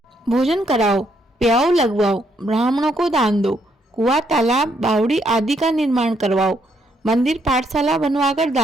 भोजन कराओ, प्याओ लगवाओ, ब्राह्मणों को दान दो, कुआं तालाब बावड़ी आदि का निर्माण करवाओ, मंदिर पाठशाला बनवाकर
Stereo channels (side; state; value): both; normal; correlation 0.74